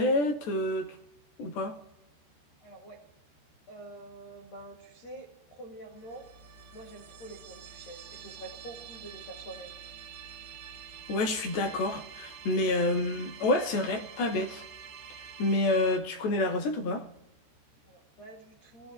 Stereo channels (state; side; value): late; right; 14 ms